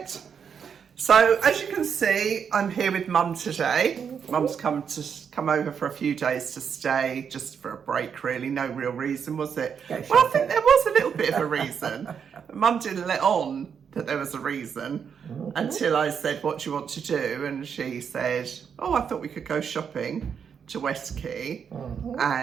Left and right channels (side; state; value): left; quieter; 7.1 dB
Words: So, as you can see, I'm here with Mum today. Mum's come over for a few days to stay, just for a break, really. No real reason, was it? Well, I think there was a little bit of a reason. Mum didn't let on that there was a reason until I said, what do you want to do? And she said, oh, I thought we could go shopping to West Quay.